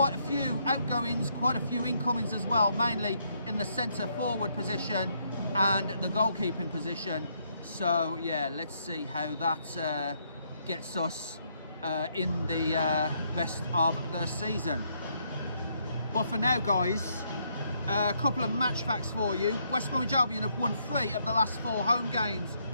a few outgoings, quite a few incomings as well, mainly in the centre forward position and the goalkeeping position. So yeah, let's see how that gets us in the rest of the season. But for now, guys, a couple of match facts for you. West Bromwich Albion have won 3 of the last 4 home games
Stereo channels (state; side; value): inverted; both; correlation -0.73